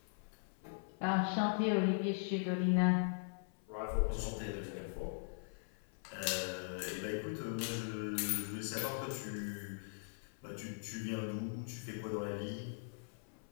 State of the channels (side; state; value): right; silent; 51 dB below the other